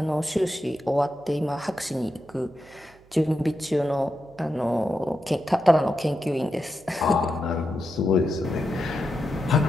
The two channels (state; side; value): noise; right; hum, 28 dB below the sound